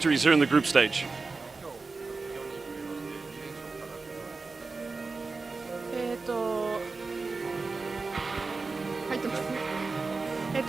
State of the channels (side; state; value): left; quieter; 4.0 dB